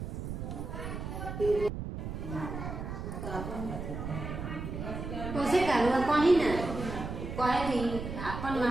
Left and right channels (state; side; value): noise; right; rumble, 6 dB below the sound